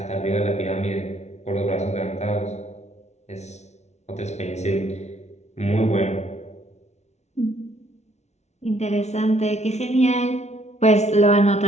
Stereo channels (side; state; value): right; late; 0.32 ms